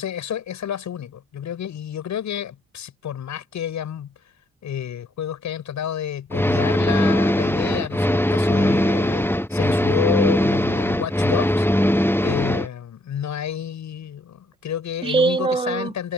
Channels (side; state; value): both; normal; correlation 0.70